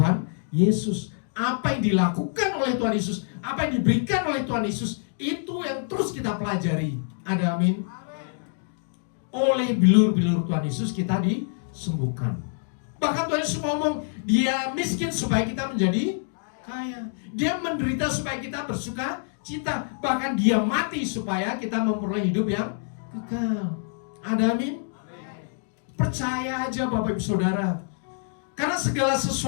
Yesus. Apa yang dilakukan oleh Tuhan Yesus, apa yang diberikan oleh Tuhan Yesus, itu yang terus kita pelajari. Ada amin? Oleh bilur-bilur Tuhan Yesus kita disembuhkan. Bahkan Tuhan Yesus ngomong, dia miskin supaya kita menjadi kaya. Dia menderita supaya kita bersuka cita. Bahkan dia mati supaya kita memperoleh hidup yang kekal. Ada amin? Percaya aja Bapak Ibu Saudara. Karena segala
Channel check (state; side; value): silent; right; digital silence